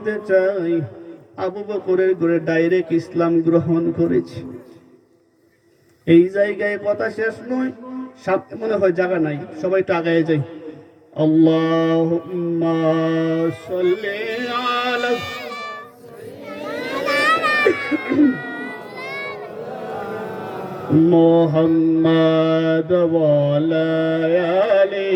চাই, আবু বকরের ঘরে ডাইরেক্ট ইসলাম গ্রহণ করেছে। এই জায়গায় কথা শেষ নয়, মনে হয় জায়গা নাই, সবাই তো আগায় যাই। আল্লাহুম্মা সাল্লি আলা মুহাম্মাদ ওয়া আলা আলি।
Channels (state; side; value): identical; both; correlation 1.00